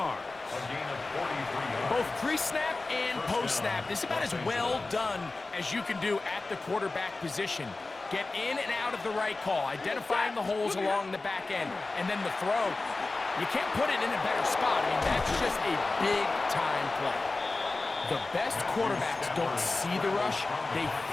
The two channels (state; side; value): quieter; right; 3.4 dB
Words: Both pre-snap and post-snap. This is about as well done as you can do at the quarterback position. Get in and out of the right call, identifying the holes along the back end, and then the throw. You can't put it in a better spot. I mean, that's just a big-time play. The best quarterbacks don't see the rush, they